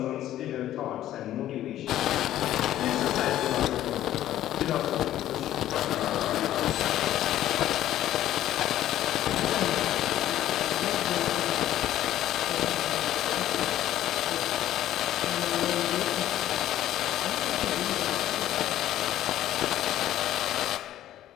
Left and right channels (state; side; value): quieter; right; 12.9 dB